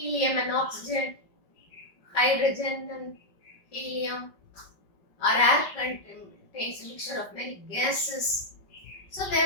and oxygen, hydrogen and helium, or air contains a mixture of many gases. So they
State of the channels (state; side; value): late; right; 5.3 ms